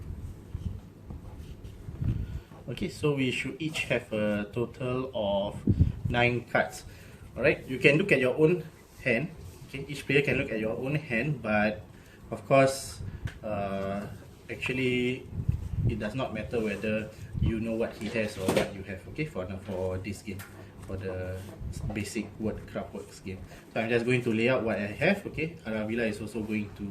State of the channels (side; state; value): both; identical; correlation 1.00